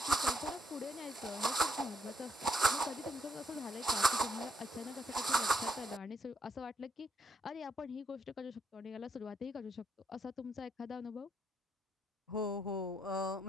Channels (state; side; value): normal; both; correlation 0.76